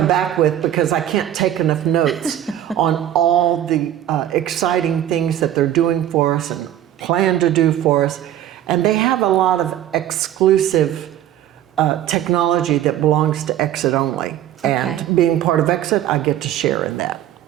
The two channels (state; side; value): quieter; left; 11.8 dB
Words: back with, because I can't take enough notes on all the exciting things that they're doing for us and plan to do for us. And they have a lot of exclusive technology that belongs to Exit only. And being part of Exit, I get to share in that.